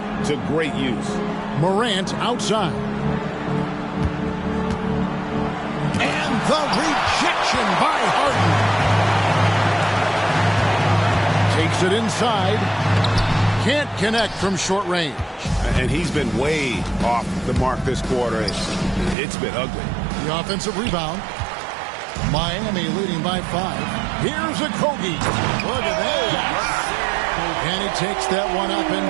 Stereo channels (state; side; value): drops out; left; at 19.2 s